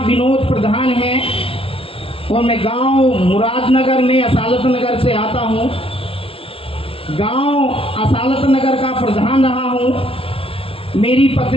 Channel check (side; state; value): right; late; 0.27 ms